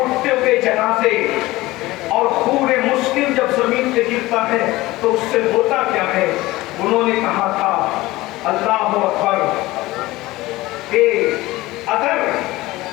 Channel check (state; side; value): quieter; right; 18.8 dB